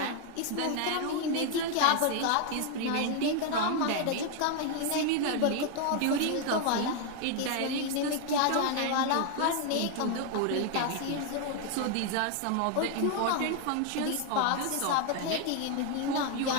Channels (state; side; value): different; both; correlation 0.00